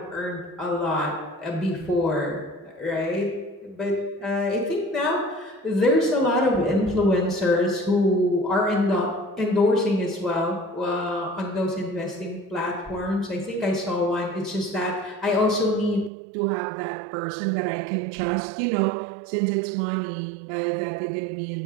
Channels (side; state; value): left; drops out; at 16.1 s